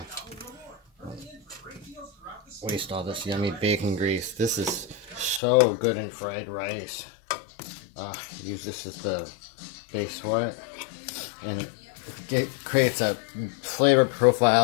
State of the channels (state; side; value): drops out; right; at 5.4 s